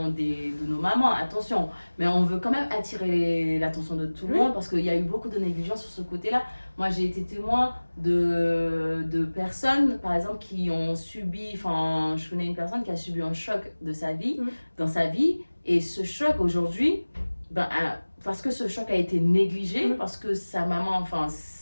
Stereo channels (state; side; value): inverted; both; correlation -1.00